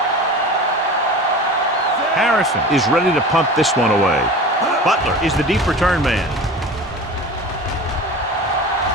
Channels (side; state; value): both; normal; correlation 0.35